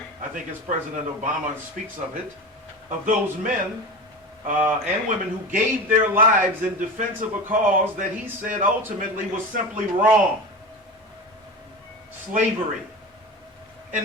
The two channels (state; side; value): normal; both; correlation 0.28